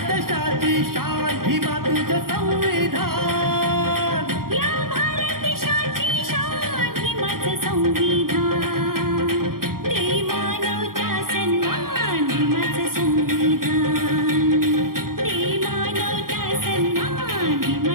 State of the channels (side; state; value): left; late; 0.92 ms